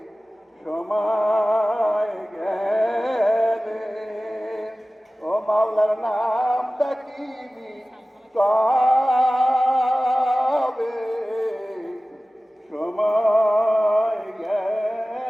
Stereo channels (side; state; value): both; normal; correlation 0.97